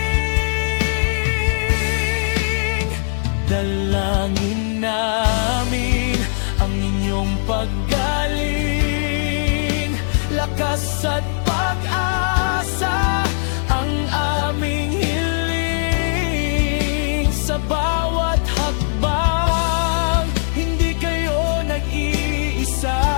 Dalangin namin ang inyong paggaling, lakas at pag-asa ang aming hiling. Sa bawat hakbang, hindi kayo nag-iisa,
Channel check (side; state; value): right; silent; digital silence